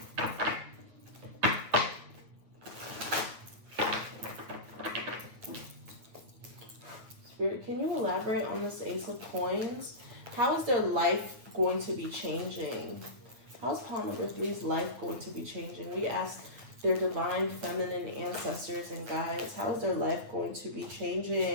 Spirit, can you elaborate on this Ace of Coins? How is their life going to be changing? How is pile number 3's life going to be changing? We ask their divine feminine ancestors and guides, how is their life going to be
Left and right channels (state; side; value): late; left; 9.0 ms